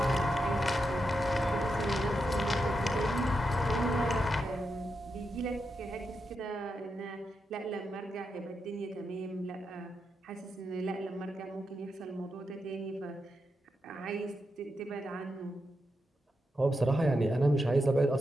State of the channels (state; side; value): normal; both; correlation 0.86